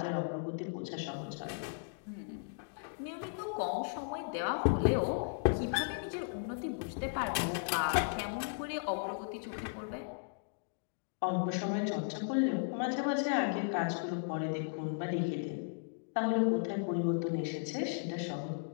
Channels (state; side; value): silent; right; digital silence